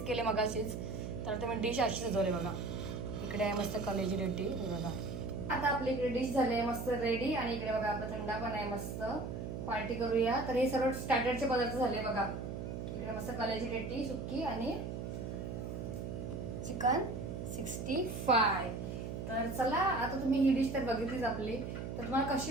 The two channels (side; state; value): right; noise; hum, 5 dB below the sound